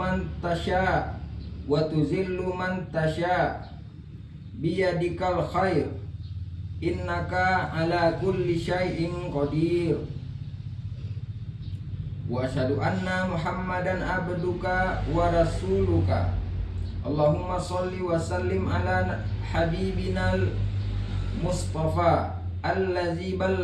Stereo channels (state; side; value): identical; both; correlation 1.00